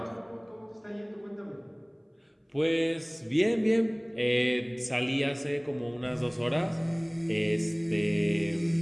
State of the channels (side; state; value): both; identical; correlation 1.00